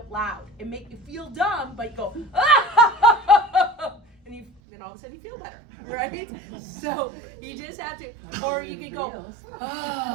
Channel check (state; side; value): drops out; left; at 4.5 s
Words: loud and make you feel dumb, but you go, ah! And then all of a sudden you feel better, right? So you just have to, or you could go,